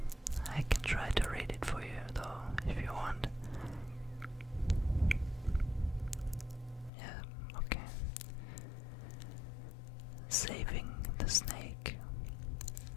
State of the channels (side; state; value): right; drops out; at 6.9 s